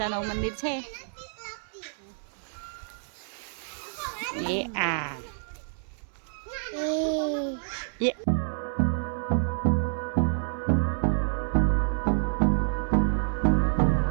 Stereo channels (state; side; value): silent; left; 59 dB below the other